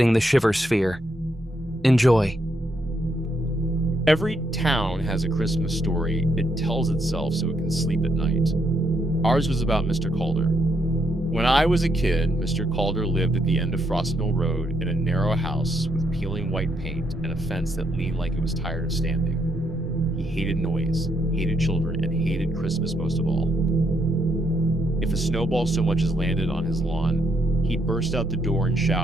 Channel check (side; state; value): both; normal; correlation 0.76